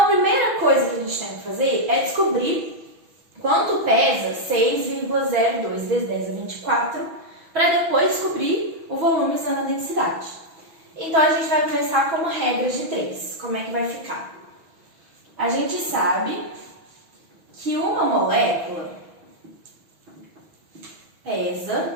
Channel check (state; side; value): late; left; 6.1 ms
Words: primeira coisa que a gente tem que fazer é descobrir quanto pesa 6,02 vezes 10 a 24, para depois descobrir o volume usando a densidade. Então, a gente vai começar como regra de 3. Como é que vai ficar? A gente sabe que uma molécula